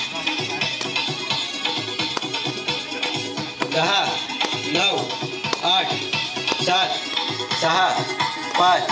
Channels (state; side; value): identical; both; correlation 1.00